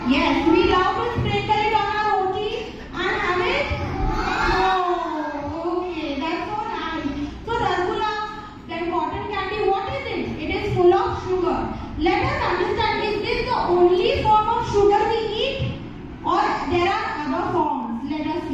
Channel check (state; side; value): identical; both; correlation 1.00